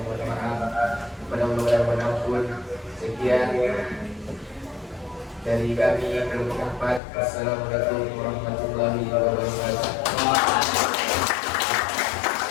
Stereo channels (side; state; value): right; drops out; at 7.0 s